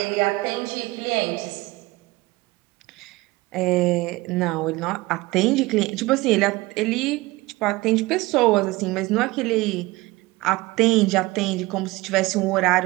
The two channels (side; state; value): left; quieter; 21.0 dB